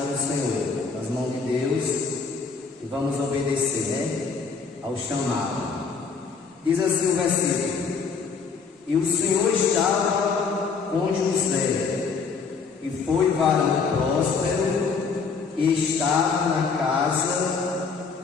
do Senhor, nas mãos de Deus, e vamos obedecer, ao chamado. Diz assim o versículo: e o Senhor estava com José, e foi varão próspero, e estava na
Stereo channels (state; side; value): quieter; right; 5.2 dB